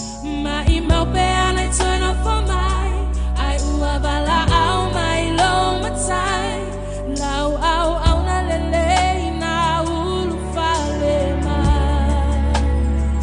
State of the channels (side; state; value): both; identical; correlation 1.00